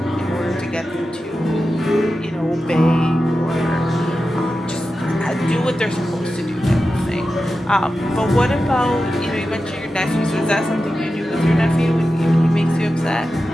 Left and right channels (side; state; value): both; normal; correlation 0.92